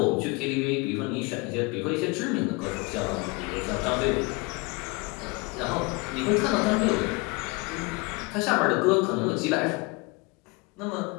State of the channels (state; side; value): quieter; right; 27.4 dB